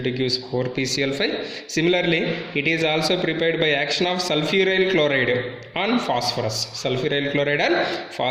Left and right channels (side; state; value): both; identical; correlation 1.00